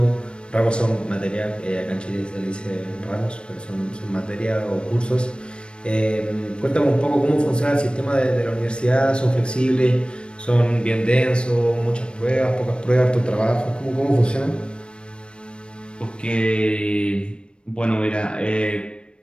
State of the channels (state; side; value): late; right; 0.055 ms